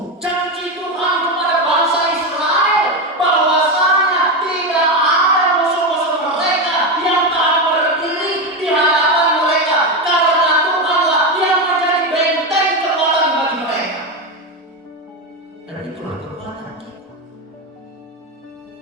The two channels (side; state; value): both; normal; correlation 0.13